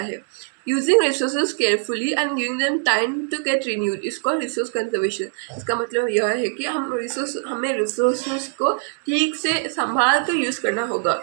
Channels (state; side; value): silent; left; digital silence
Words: Using resources carefully and giving them time to get renewed is called resource conservation. इसका मतलब यह है कि हमें रिसोर्सेज को ठीक से संभाल कर यूज़ करना होगा